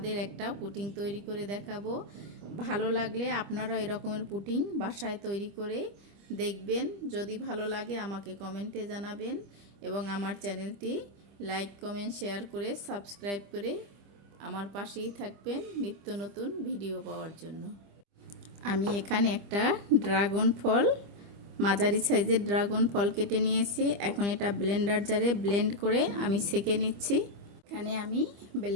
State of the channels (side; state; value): left; late; 25 ms